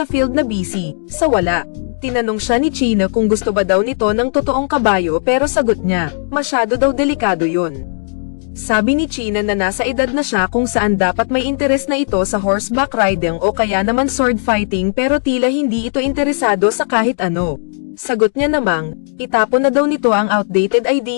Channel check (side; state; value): right; silent; digital silence